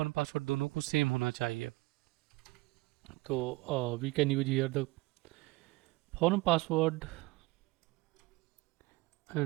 पासवर्ड दोनों को सेम होना चाहिए. तो we can use here the form password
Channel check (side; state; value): left; quieter; 22.3 dB